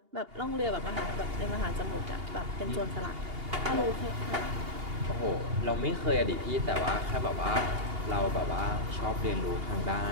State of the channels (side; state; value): left; late; 2.8 ms